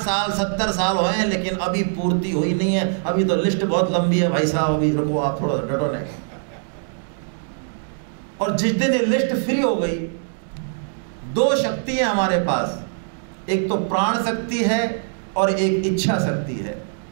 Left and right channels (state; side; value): silent; left; digital silence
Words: 70 साल हुए हैं लेकिन अभी पूर्ति हुई नहीं है, अभी तो लिस्ट बहुत लंबी है भाई साहब, अभी रुको आप थोड़ा डटो नहीं। और जिस दिन ये लिस्ट फ्री हो गई, 2 शक्ति है हमारे पास, एक तो प्राण शक्ति है और एक इच्छा शक्ति है।